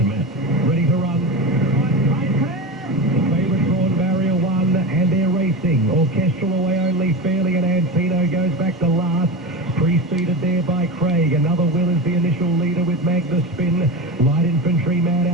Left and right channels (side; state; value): both; normal; correlation 0.23